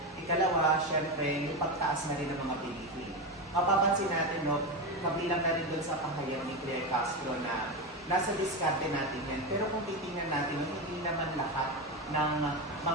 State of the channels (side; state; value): both; normal; correlation 0.16